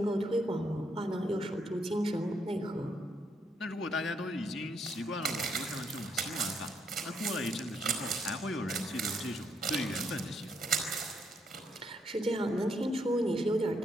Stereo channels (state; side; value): normal; both; correlation 0.75